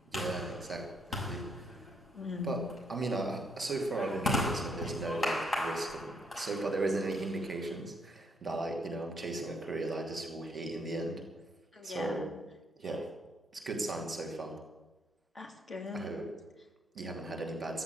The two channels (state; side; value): normal; both; correlation 0.72